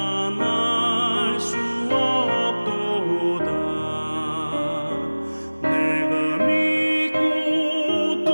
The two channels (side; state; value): both; inverted; correlation -1.00